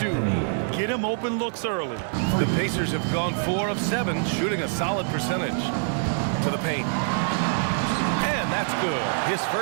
Get him open looks early. The Pacers have gone 4 of 7, shooting a solid percentage. To the paint. And that's good. His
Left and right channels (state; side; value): silent; left; digital silence